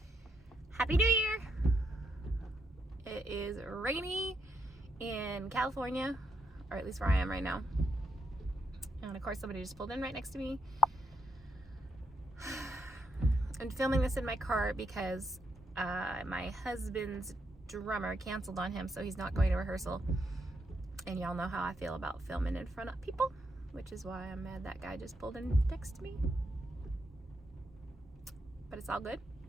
Happy New Year! It is rainy in California, or at least where I am right now. And of course somebody just pulled in right next to me. I'm filming this in my car because my husband's drummer canceled on him, so he's not going to rehearsal. And y'all know how I feel about filming in front of people, which is why I'm mad that guy just pulled in next to me. But it's all good.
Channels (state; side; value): normal; both; correlation 0.79